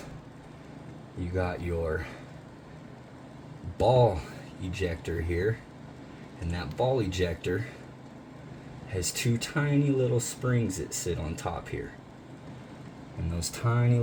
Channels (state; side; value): identical; both; correlation 1.00